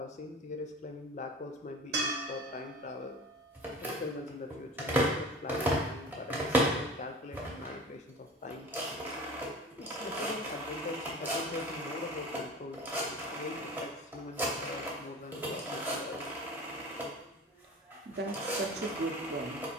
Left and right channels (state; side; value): normal; both; correlation 0.37